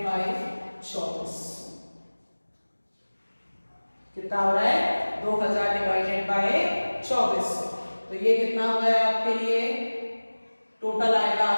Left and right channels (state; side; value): inverted; both; correlation -1.00